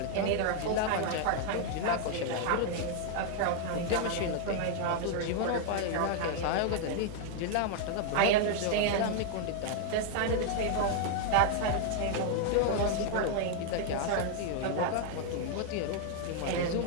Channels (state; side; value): different; both; correlation 0.00